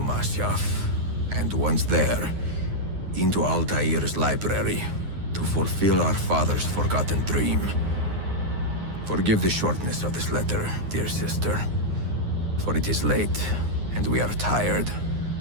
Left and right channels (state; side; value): late; left; 9.6 ms